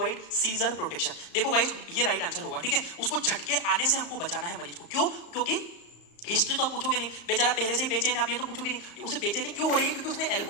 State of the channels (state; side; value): late; right; 35 ms